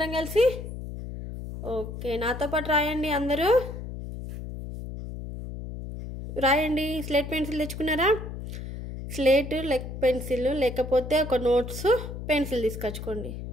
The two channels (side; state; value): left; noise; hum, 8 dB below the sound